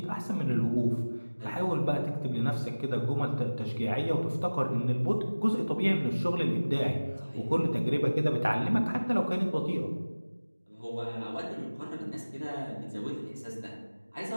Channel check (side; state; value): both; inverted; correlation -1.00